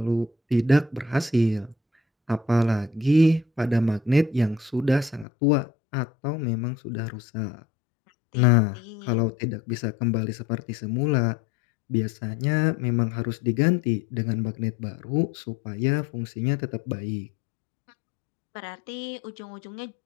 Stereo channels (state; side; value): drops out; right; at 5.2 s